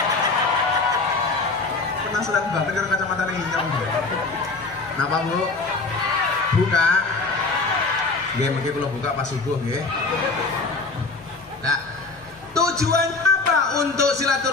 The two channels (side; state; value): right; quieter; 3.8 dB